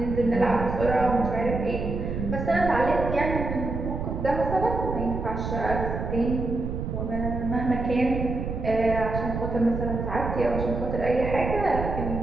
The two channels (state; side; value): noise; right; rumble, 4 dB below the sound